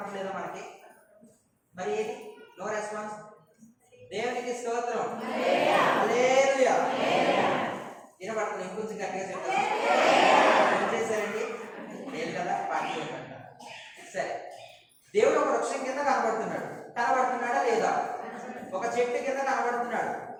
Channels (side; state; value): both; identical; correlation 1.00